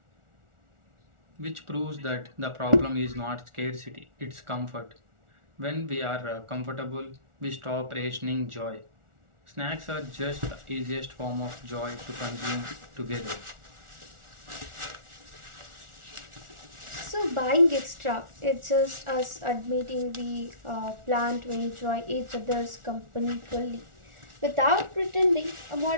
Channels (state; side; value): late; left; 1.4 ms